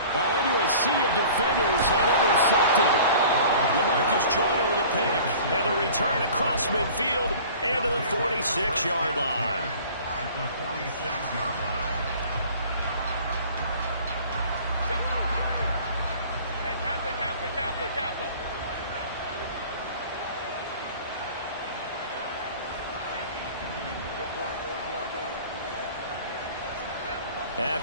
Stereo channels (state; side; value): inverted; both; correlation -0.45